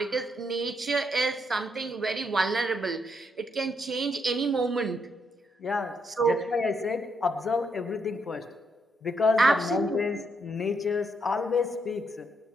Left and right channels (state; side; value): normal; both; correlation 0.77